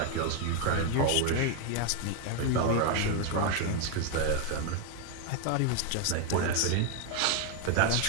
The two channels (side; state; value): both; different; correlation 0.01